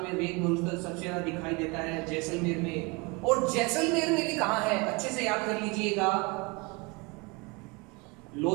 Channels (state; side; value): quieter; left; 27.8 dB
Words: में रेत मरुस्थल सबसे ज्यादा दिखाई देता है जैसलमेर में। और जैसलमेर में भी कहां है? अच्छे से याद कर लीजिएगा,